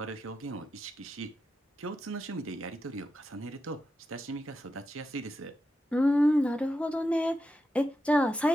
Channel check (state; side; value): normal; both; correlation 0.88